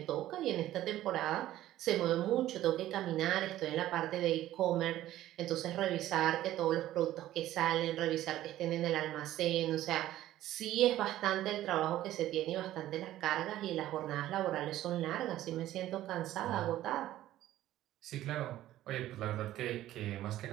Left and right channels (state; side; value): quieter; left; 14.0 dB